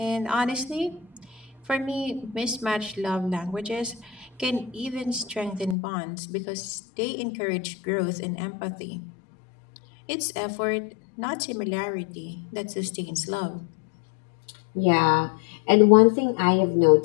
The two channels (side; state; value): right; drops out; at 5.8 s